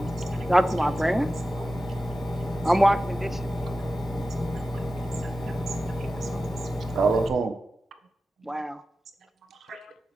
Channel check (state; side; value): normal; both; correlation 0.94